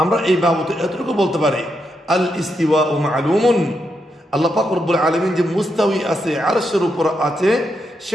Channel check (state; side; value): normal; both; correlation 0.82